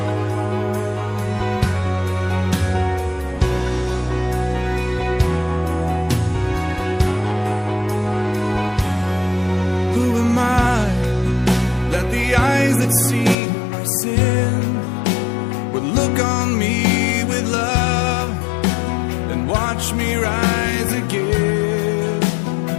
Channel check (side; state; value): right; drops out; at 13.4 s